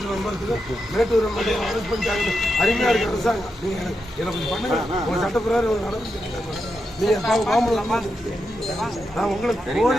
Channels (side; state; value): both; normal; correlation 0.86